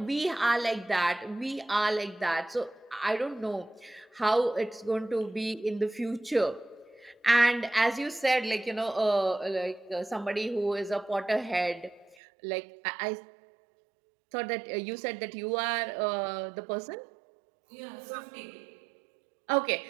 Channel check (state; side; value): drops out; left; at 12.2 s